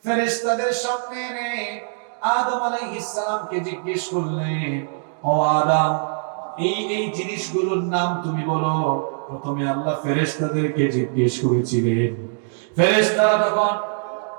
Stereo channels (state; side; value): silent; left; digital silence